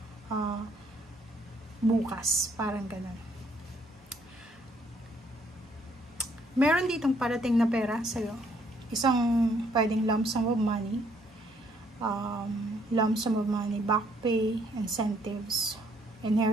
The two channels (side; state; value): both; normal; correlation 0.67